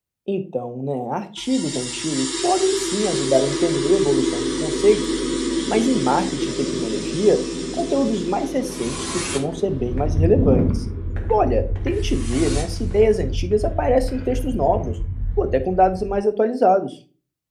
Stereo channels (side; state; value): both; identical; correlation 1.00